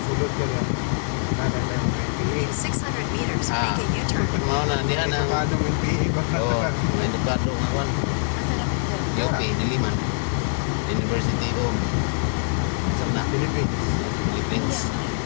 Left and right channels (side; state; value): right; silent; 57 dB below the other